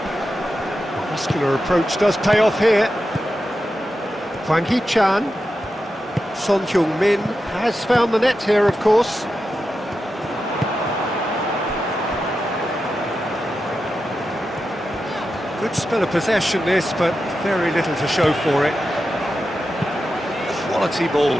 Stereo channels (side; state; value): both; normal; correlation 0.90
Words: muscular approach does pay off here. Hwang Hee-chan. Son Heung-min has found the net here, of course. Good spell of possession this, but very little to show for it. Quality